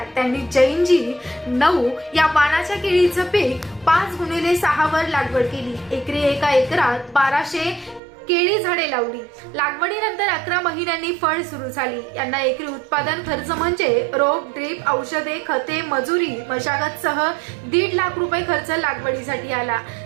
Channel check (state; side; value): drops out; left; at 8.0 s